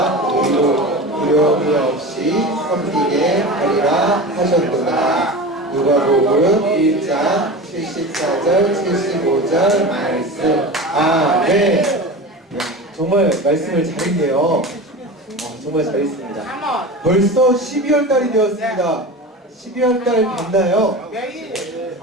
의로 두려움이 없이 섬기게 하리라 하셨구나. 누가복음 1장 74절 75절 말씀. 아멘. 네, 정말 말씀을 잘했네요. 정말 잘했습니다. 벌써 12월 달이 되었습니다. 12월 달 됐나요?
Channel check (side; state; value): both; normal; correlation 0.30